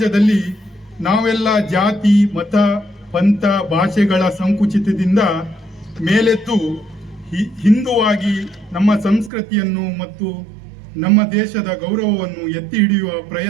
ನಾವೆಲ್ಲ ಜಾತಿ, ಮತ, ಪಂಥ, ಭಾಷೆಗಳ ಸಂಕುಚಿತದಿಂದ ಮೇಲೆದ್ದು ಹಿಂದುವಾಗಿ ನಮ್ಮ ಸಂಸ್ಕೃತಿಯನ್ನು ಮತ್ತು ನಮ್ಮ ದೇಶದ ಗೌರವವನ್ನು ಎತ್ತಿ ಹಿಡಿಯುವ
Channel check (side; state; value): left; drops out; at 9.3 s